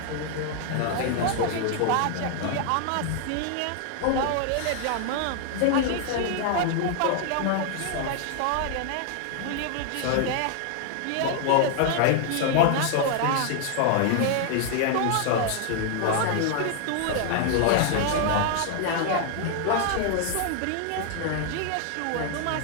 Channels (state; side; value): different; both; correlation 0.00